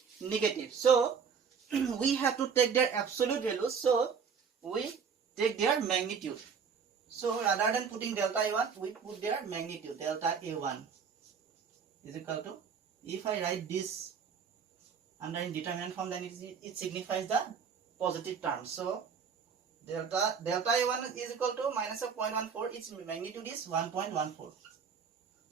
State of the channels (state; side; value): quieter; left; 6.3 dB